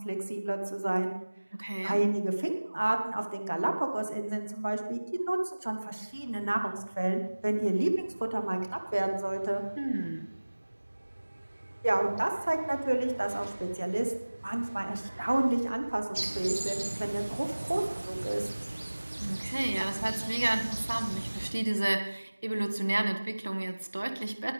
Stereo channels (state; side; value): inverted; both; correlation -1.00